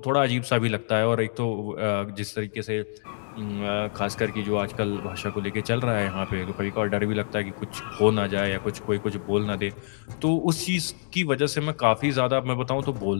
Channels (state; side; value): silent; right; digital silence